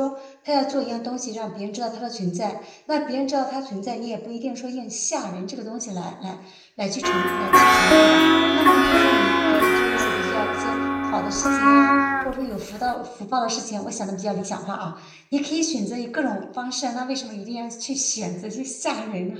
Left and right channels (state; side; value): identical; both; correlation 1.00